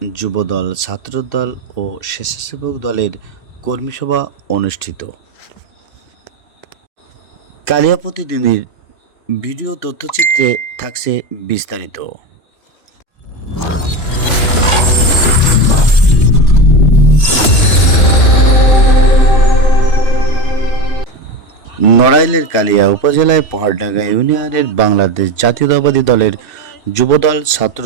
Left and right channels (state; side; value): late; right; 3.0 ms